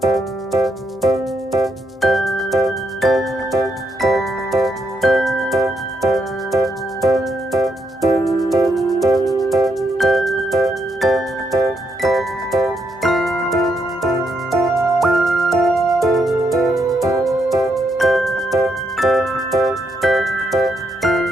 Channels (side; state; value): both; normal; correlation 0.77